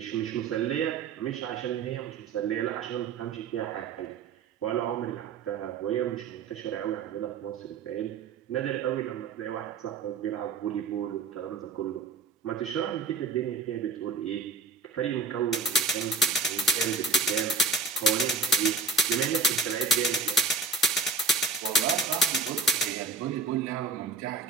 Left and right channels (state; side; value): quieter; left; 3.9 dB